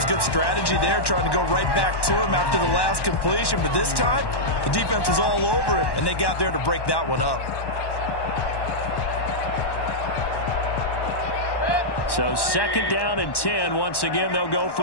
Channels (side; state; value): right; late; 1.1 ms